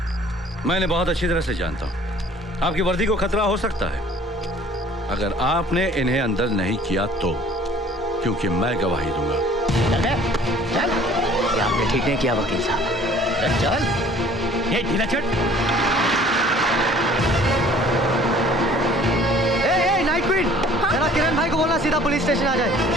मैंने बहुत अच्छी तरह से जानता हूँ। आपकी वर्दी को खतरा हो सकता है अगर आपने इन्हें अंदर नहीं किया तो, क्योंकि मैं गवाही दूंगा। चल। ये आपने ठीक नहीं किया वकील साहब। चल। ये ढीला चट। नाइट क्वीन, जरा किरण भाई को बोलना सीधा पुलिस स्टेशन आ जाए।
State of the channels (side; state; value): both; normal; correlation 0.53